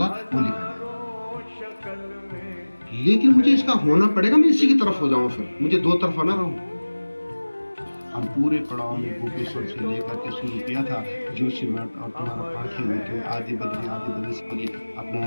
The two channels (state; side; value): inverted; both; correlation -1.00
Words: वो लिखा जाएगा, लेकिन मुझे इसका होना पड़ेगा, मैं इसी की तरफ हो जाऊं, फिर मुझे दो तरफा ना रहूं। हम पूरे पड़ाव में गोपेश्वर से लेकर के शुरू किया था, जोशीमठ और तुम्हारा पाखी होते आदि बद्री से